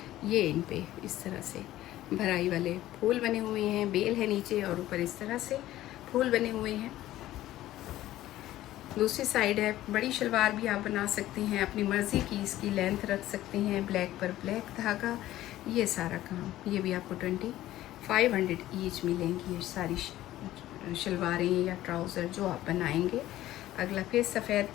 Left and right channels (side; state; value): right; quieter; 14.7 dB